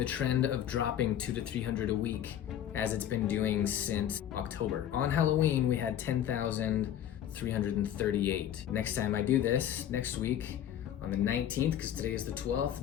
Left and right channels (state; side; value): quieter; right; 10.6 dB